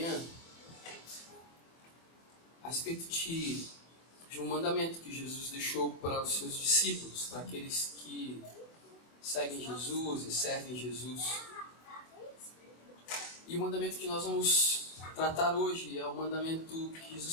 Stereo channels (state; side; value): late; right; 24 ms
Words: a respeito de um mandamento que Jesus deixou para os seus discípulos, para aqueles que seguem Jesus e servem Jesus. E o mandamento que nós vamos tratar hoje é um mandamento que